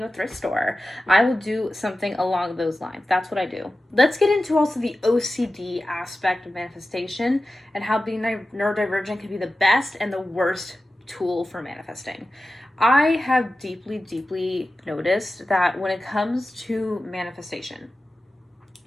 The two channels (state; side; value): normal; both; correlation 0.94